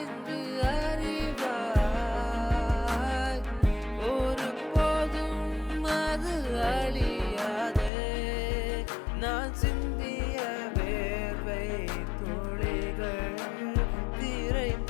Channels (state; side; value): drops out; right; at 7.9 s